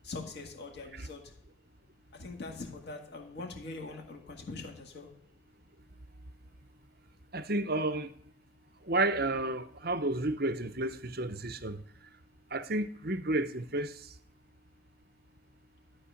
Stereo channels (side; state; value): both; normal; correlation 0.20